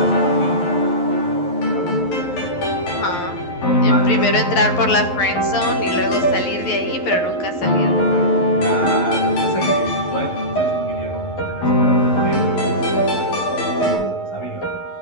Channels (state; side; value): late; right; 11 ms